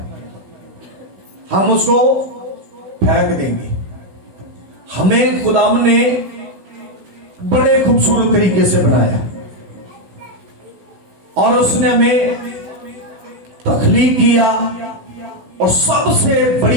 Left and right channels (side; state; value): left; late; 16 ms